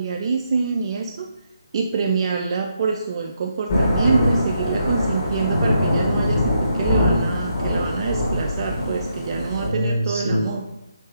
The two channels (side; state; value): both; inverted; correlation -0.78